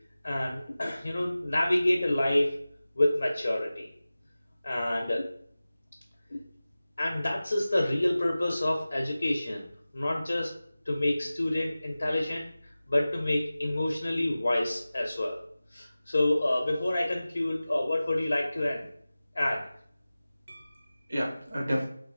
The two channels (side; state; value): both; inverted; correlation -0.97